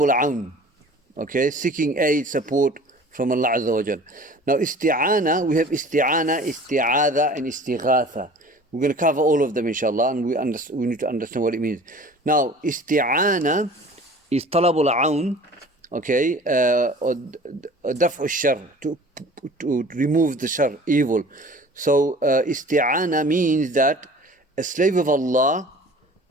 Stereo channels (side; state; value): both; normal; correlation 0.45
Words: aun. Okay, seeking aid, support from Allah Azza wa Jal. Now isti'ana, we have isti'ana, isti'adha and istighatha. We're going to cover all of them inshallah, and we need to understand what it means. Now isti'ana is talabul aun, okay, or daf'u shar, to remove the shar, evil. So isti'ana means that a slave of Allah